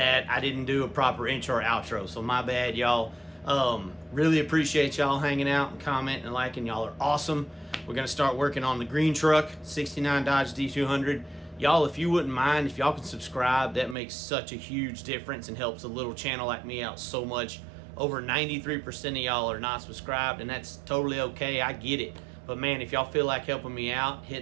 I didn't do a proper intro or outro, so my bad y'all. Really appreciate y'all hanging out and commenting and liking. Y'all are awesome. We're gonna start working on the green truck, 69 Dodge D200. Y'all, if you wouldn't mind, if y'all can subscribe, that makes such a huge difference and helps a little channel like me out so much. Over 93% of y'all are not subscribed, and that's totally okay. I get it. But man, if y'all feel like helping me out,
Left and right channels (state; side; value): drops out; left; at 14.0 s